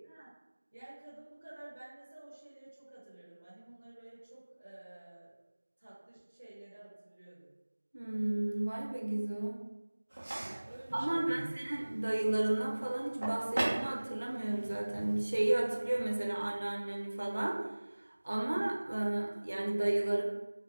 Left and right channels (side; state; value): both; inverted; correlation -1.00